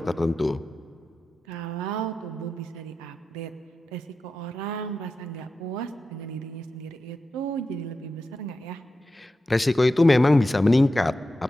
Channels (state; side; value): normal; both; correlation 0.91